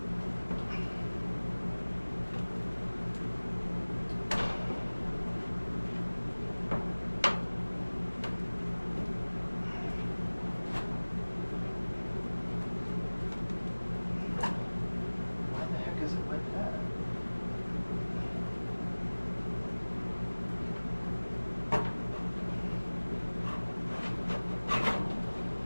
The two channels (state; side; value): inverted; both; correlation -1.00